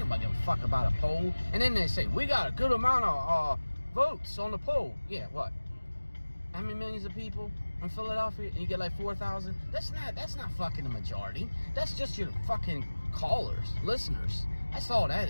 give a fuck about a poll. And then they say, we got a good amount of votes on the poll. Yeah, what? How many millions of people in Philadelphia? And you get like 4,000? That's not fucking the majority. That's just your fucking callers, listeners. That's all that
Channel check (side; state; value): both; inverted; correlation -1.00